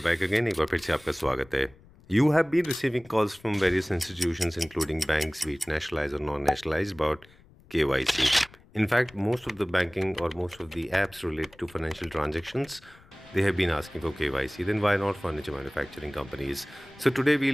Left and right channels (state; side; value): noise; left; rumble, 26 dB below the sound